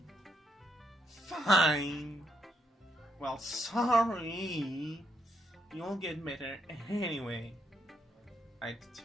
Fine. Well, sorry. You'll get better anyway. I'd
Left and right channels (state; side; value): normal; both; correlation 0.77